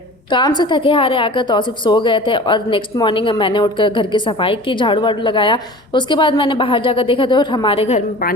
काम से थके हारे आकर तौसीफ सो गए थे और नेक्स्ट मॉर्निंग मैंने उठकर घर की सफाई की, झाड़ू वाड़ू लगाया। उसके बाद मैंने बाहर जाकर देखा तो हमारे घर में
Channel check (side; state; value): both; normal; correlation 0.40